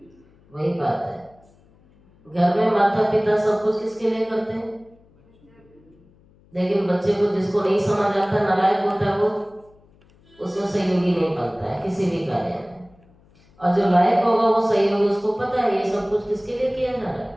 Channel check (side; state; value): left; noise; hum, 30 dB below the sound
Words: वही बात है। घर में माता पिता सब कुछ किसके लिए करते हैं? लेकिन बच्चे को जिसको नहीं समझ आता, नालायक होता है, वो उसमें सहयोगी नहीं बनता है किसी भी कार्य में। और जो लायक होगा वो सहयोगी, उसको पता है ये सब कुछ किसके लिए किया जा रहा